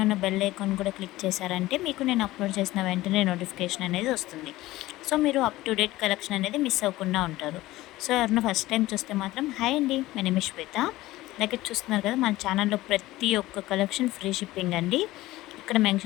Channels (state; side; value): quieter; right; 17.4 dB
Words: ఉన్న బెల్ ఐకాన్ కూడా క్లిక్ చేశారంటే మీకు నేను అప్లోడ్ చేసిన వెంటనే నోటిఫికేషన్ అనేది వస్తుంది. సో మీరు అప్ టు డేట్ కలెక్షన్ అనేది మిస్ అవ్వకుండా ఉంటారు. సో ఎవరైనా ఫస్ట్ టైం చూస్తే మాత్రం హాయ్ అండి, మై నేమ్ ఇస్ శ్వేత. అలాగే చూస్తున్నారు కదా, మన ఛానల్లో ప్రతి ఒక్క కలెక్షన్ ఫ్రీ షిప్పింగ్ అండి. ఇక్కడ